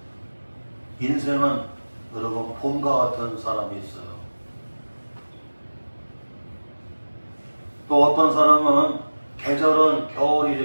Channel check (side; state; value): both; inverted; correlation -1.00